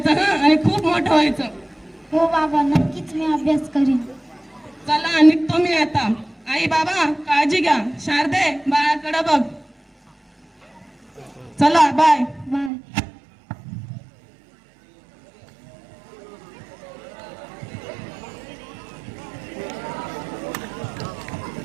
हा, आणि खूप मोठं व्हायचं. हो बाबा, नक्कीच मी अभ्यास करीन. चला निघतो मी आता. आई बाबा काळजी घ्या. शारदे, बाळाकडे बघ. चला बाय. बाय.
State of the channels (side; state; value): left; drops out; at 12.7 s